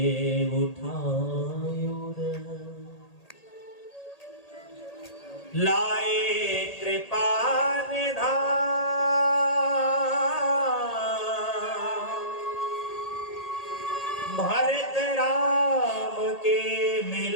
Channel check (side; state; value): right; late; 1.8 ms